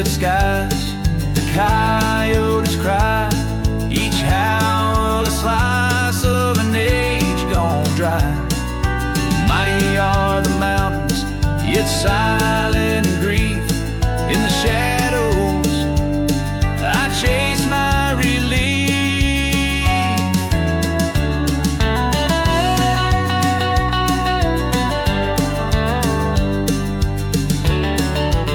skies, the coyotes cry, each howl a slice of an age gone dry. Mighty are the mountains, yet silent grief. In the shadows I chase my relief.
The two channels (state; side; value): identical; both; correlation 1.00